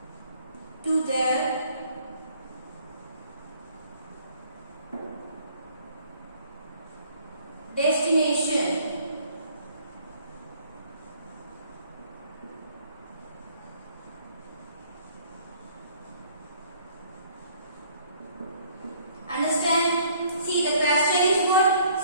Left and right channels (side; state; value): both; inverted; correlation -0.59